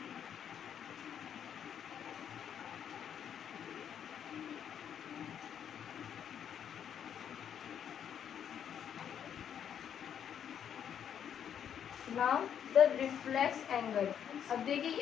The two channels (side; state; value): right; quieter; 8.8 dB